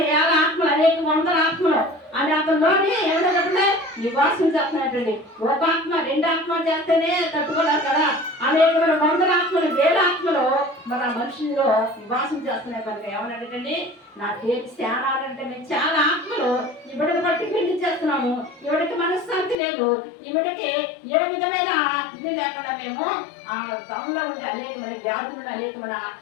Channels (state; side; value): drops out; right; at 19.6 s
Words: 50 ఆత్మలు, అనేక 100 ఆత్మలు అని అతనిలోని ఏమైనా చెప్పండి నివాసం చేస్తున్నాయండి. ఒక ఆత్మ 2 ఆత్మలు చేస్తేనే తట్టుకోలేరు కదా, అనేకమైన 100 ఆత్మలు 1000 ఆత్మలు మన మనుషుల్లో నివాసం చేస్తున్నాయి. కనుక ఏమన్నాడండి, నా పేరు శాన అంటే మేము చాలా ఆత్మలు ఇవిడికి బట్టి పిండి చేస్తున్నాము, ఇవిడికి మనశ్శాంతి లేదు, ఇవిడికి ఏ విధమైన ఇది లేకుండా మేము ఆ తమలో ఉండే అనేకమైన వ్యాధులను అనేకమైన